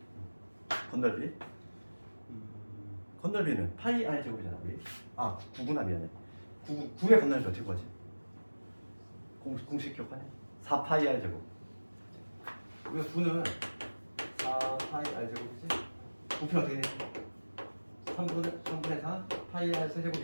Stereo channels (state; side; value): inverted; both; correlation -1.00